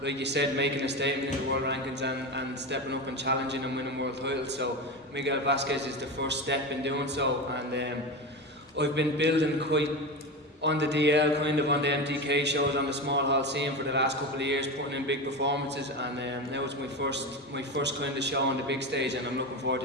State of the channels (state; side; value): normal; both; correlation 0.22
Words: like you said, making a statement in the world rankings and stepping up and challenging and winning world titles. So Miguel Vasquez is the first step in doing so, and I've been building quite on the DL, kind of on the MTK shows, on the small hall scene for the last couple of years, putting in big performances, and now it's my first kind of show on the big stage, and I'm looking forward